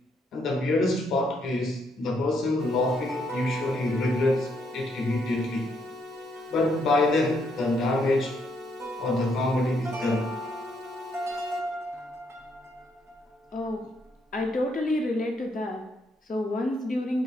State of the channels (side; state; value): both; normal; correlation 0.74